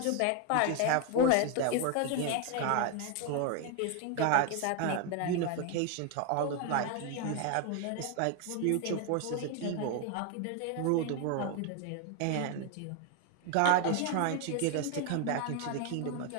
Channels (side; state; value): both; different; correlation 0.01